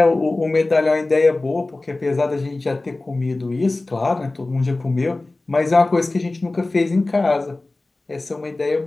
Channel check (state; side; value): quieter; right; 3.0 dB